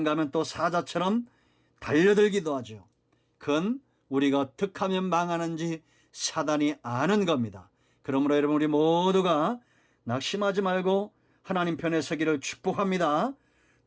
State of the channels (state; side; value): identical; both; correlation 1.00